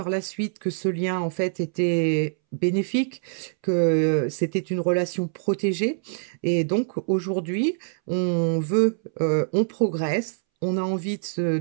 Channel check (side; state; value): left; silent; 62 dB below the other